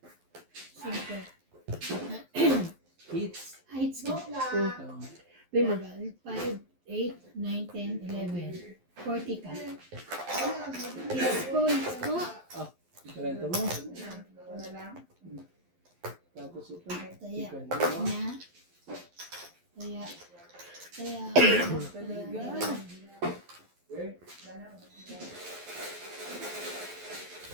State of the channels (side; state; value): left; late; 11 ms